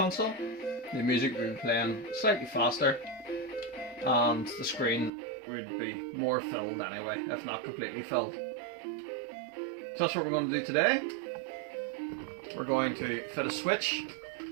The music would be playing slightly faster, and the screen would be more filled anyway, if not completely filled. So that's what we're going to do today. We're going to fit a switch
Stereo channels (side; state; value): left; drops out; at 5.1 s